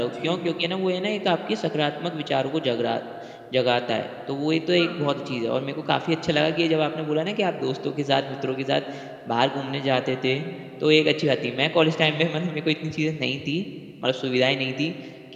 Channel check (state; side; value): identical; both; correlation 1.00